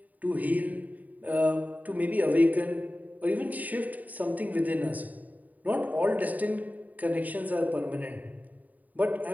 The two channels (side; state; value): left; late; 0.076 ms